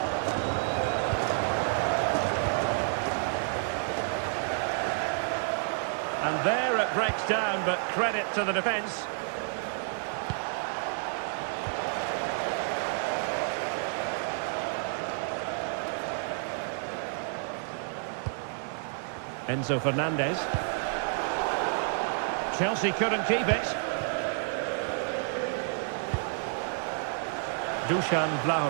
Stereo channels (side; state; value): left; silent; 56 dB below the other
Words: And there it breaks down, but credit to the defence. Enzo Fernandez. Chelsea couldn't keep it. Dusan